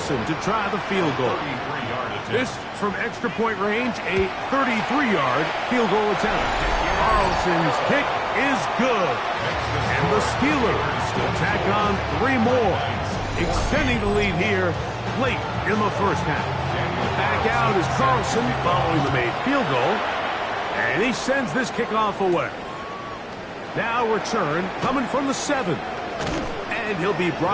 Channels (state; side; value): identical; both; correlation 1.00